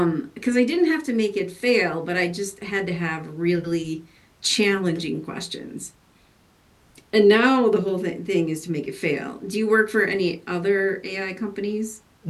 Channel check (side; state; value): both; identical; correlation 1.00